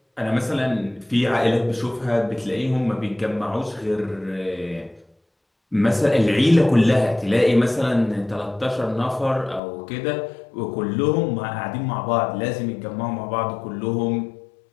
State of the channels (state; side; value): drops out; right; at 9.6 s